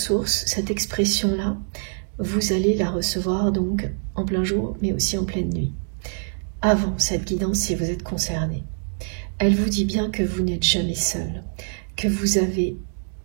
cette expression-là, vous allez la recevoir donc en plein jour, mais aussi en pleine nuit. Avant cette guidance, si vous êtes concerné, elle vous dit bien que vous n'êtes jamais seul, que vous avez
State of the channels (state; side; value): silent; left; digital silence